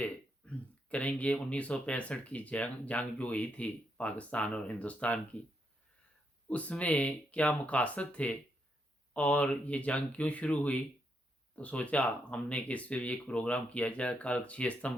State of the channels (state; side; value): normal; both; correlation 0.79